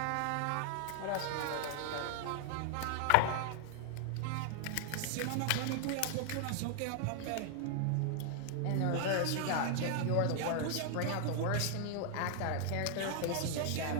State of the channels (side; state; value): both; different; correlation 0.00